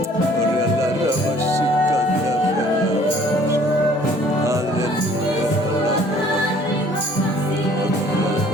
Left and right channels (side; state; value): both; normal; correlation 0.56